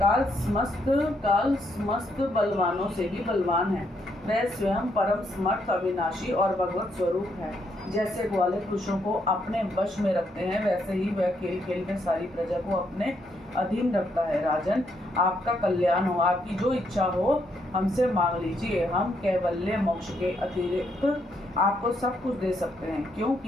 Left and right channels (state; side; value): normal; both; correlation 0.75